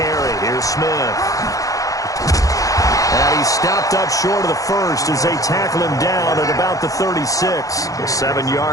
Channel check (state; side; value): late; right; 0.17 ms